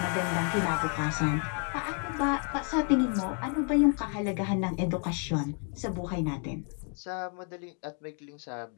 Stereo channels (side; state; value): right; quieter; 39.7 dB